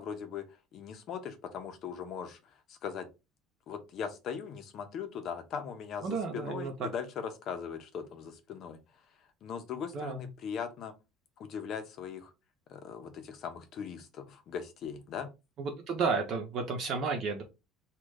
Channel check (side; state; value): both; normal; correlation 0.41